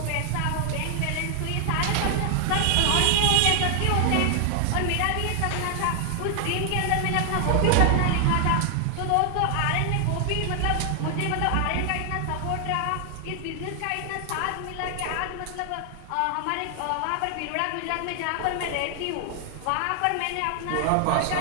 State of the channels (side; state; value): both; different; correlation 0.00